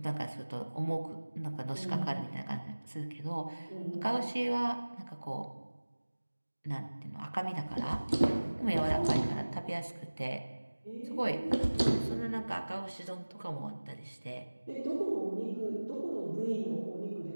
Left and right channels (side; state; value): both; inverted; correlation -1.00